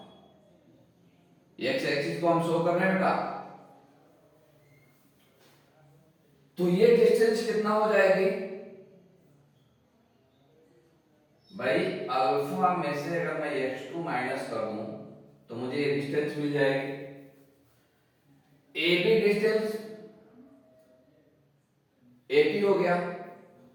x एक्सिस को हम शो कर रहे हैं बेटा। तो ये डिस्टेंस कितना हो जाएगी भाई? अल्फा में से अगर मैं x2 माइनस कर दूं तो मुझे ये डिस्टेंस मिल जाएगी। AB डिस्टेंस AP हो गया,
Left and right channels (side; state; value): both; identical; correlation 1.00